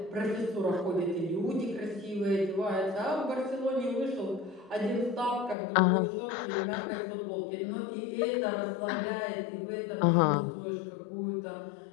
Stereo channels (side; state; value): right; drops out; at 5.6 s